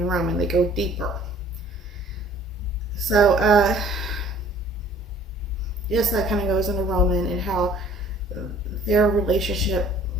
Roman. They go deeper. So, yes, that kind of goes into Roman and how their relationship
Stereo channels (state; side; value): normal; both; correlation 0.53